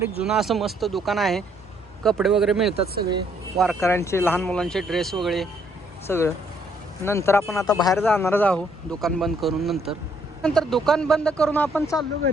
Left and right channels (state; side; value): normal; both; correlation 0.68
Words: जुनं असं मस्त दुकान आहे. कपडे वगैरे मिळतात सगळे, वारकऱ्यांचे, लहान मुलांचे ड्रेस वगैरे सगळं. नंतर आपण आता बाहेर जाणारच आहोत दुकान बंद करून. नंतर दुकान बंद करून आपण चाललो